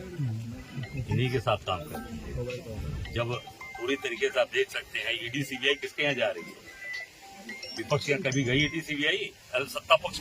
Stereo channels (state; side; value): identical; both; correlation 1.00